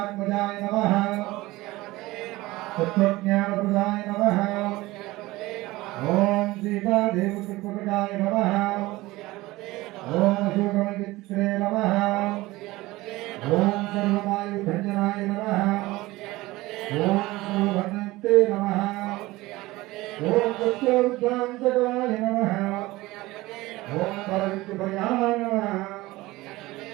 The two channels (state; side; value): quieter; left; 19.4 dB